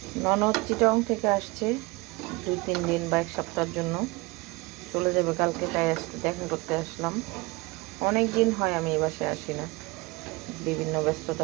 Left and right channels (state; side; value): quieter; left; 24.0 dB